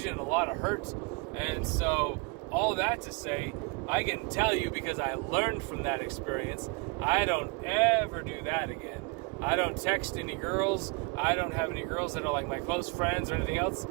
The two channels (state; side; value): quieter; left; 29.2 dB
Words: and a lot of hurt. And so all that to say, I can tell you because I learned from that experience, I don't ever do that again. I don't text any girls. I don't have any girls that are like my close friends or anything else.